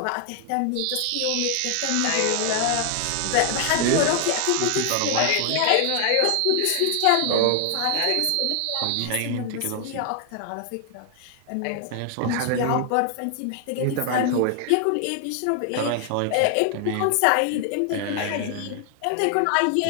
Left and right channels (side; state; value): both; different; correlation 0.00